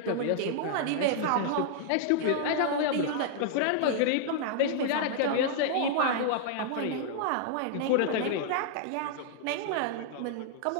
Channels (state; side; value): different; both; correlation -0.01